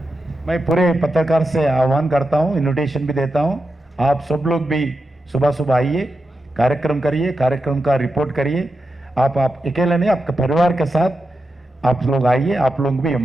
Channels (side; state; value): both; normal; correlation 0.88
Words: मैं पूरे पत्रकार से आह्वान करता हूं, इन्विटेशन भी देता हूं, आप सब लोग भी सुबह आइए, कार्यक्रम करिए, कार्यक्रम का रिपोर्ट करिए. आप अकेले नहीं, आपके परिवार के साथ आप लोग आइए, आप लोग भी